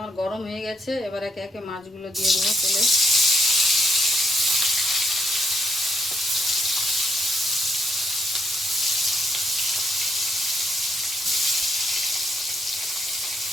গরম হয়ে গেছে, এবার একে একে মাছগুলো দিয়ে দেবো তেলে।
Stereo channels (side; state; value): both; normal; correlation 0.74